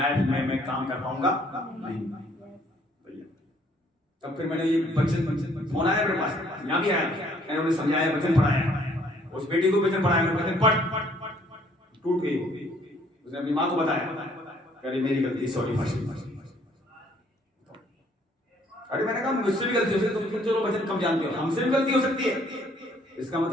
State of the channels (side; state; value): both; normal; correlation 0.63